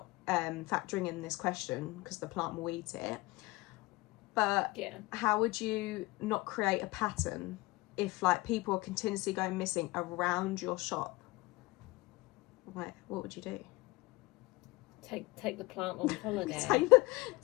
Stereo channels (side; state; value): right; quieter; 21.9 dB